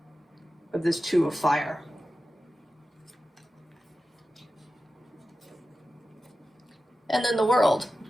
of this Two of Fire. And then the World.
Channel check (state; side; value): normal; both; correlation 0.93